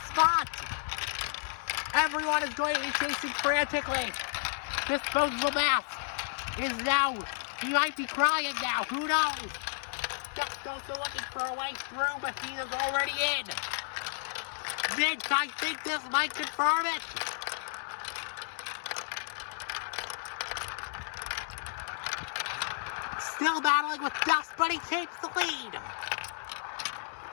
Everyone is going to be chasing frantically. Disposable Mask is now, he might be crying now, who knows? Just also looking for a way through, but he is already in. Mint, I think this might confirm it. Still battling with Dust, but he takes the lead.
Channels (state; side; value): silent; right; digital silence